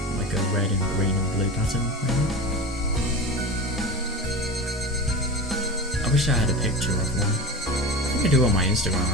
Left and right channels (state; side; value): normal; both; correlation 0.29